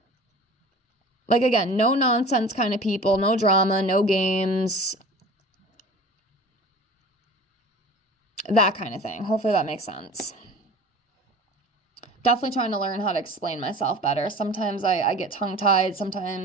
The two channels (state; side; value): normal; both; correlation 0.40